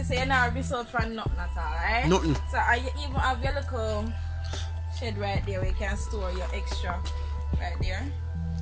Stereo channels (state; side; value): identical; both; correlation 1.00